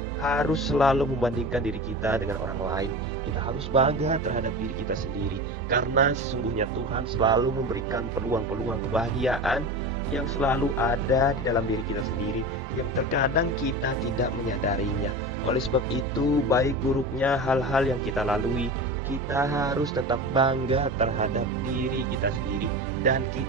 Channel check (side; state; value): both; normal; correlation 0.29